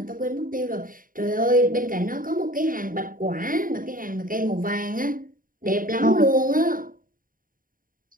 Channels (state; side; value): late; left; 0.40 ms